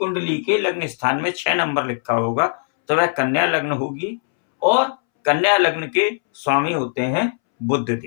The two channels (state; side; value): silent; right; 65 dB below the other